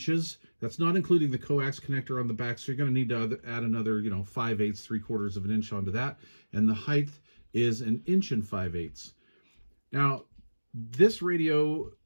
That's not including the coax connector on the back, so you're going to need to add another, 5/8, 3/4 of an inch onto that. And the height is 1 inch and 5/8. Now, this radio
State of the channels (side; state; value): both; inverted; correlation -1.00